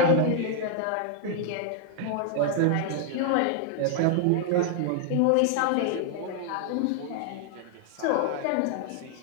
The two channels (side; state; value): both; different; correlation 0.00